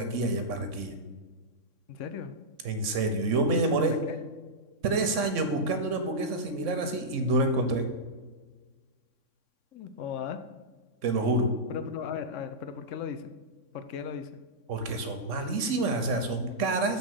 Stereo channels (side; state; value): left; late; 3.6 ms